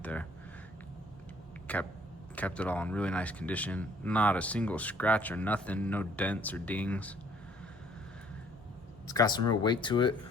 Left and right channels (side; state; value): both; normal; correlation 0.60